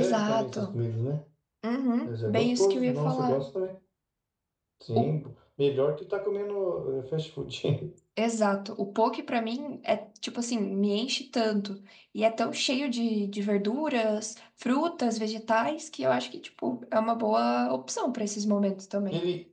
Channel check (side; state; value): both; identical; correlation 1.00